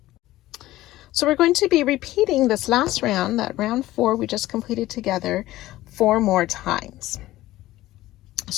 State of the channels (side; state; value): right; quieter; 16.1 dB